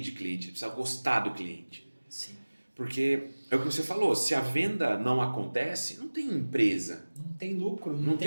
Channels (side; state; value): both; inverted; correlation -1.00